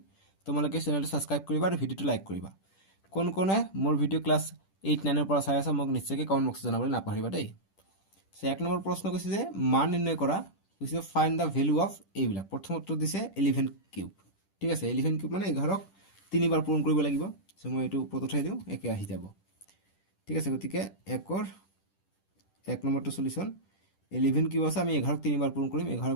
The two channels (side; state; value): right; late; 10 ms